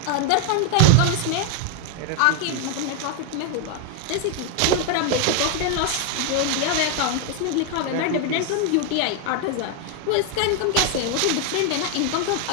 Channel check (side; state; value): both; different; correlation 0.01